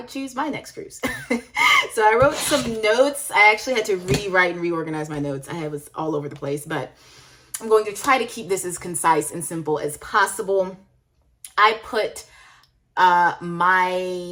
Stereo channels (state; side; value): identical; both; correlation 1.00